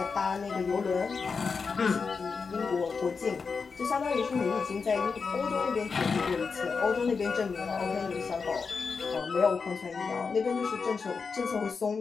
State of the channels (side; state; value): right; quieter; 5.1 dB